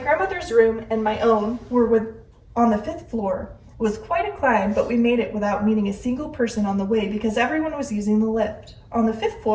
room and my own were on the 5th floor. It was quite a climb, but we made it without meeting a single person on the way because everyone was using the lift. On the 5th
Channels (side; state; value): both; identical; correlation 1.00